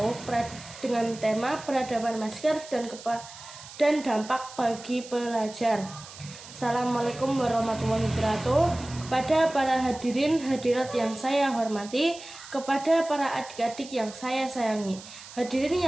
dengan tema peradaban masker dan dampak bagi pelajar. Assalamualaikum warahmatullahi wabarakatuh. Kepada para hadirin hadirat yang saya hormati, kepada para adik-adik yang saya sayangi, hadirin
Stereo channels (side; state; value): right; noise; hiss, 16 dB below the sound